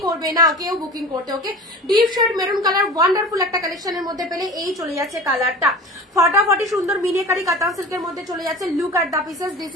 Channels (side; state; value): both; normal; correlation 0.36